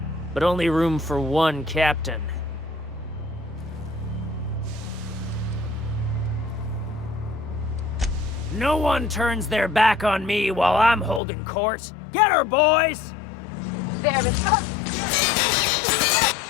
but only room for one captain. No one turns their back on me while I'm holding court. Get her, boys! There is fate.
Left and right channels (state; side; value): drops out; right; at 11.2 s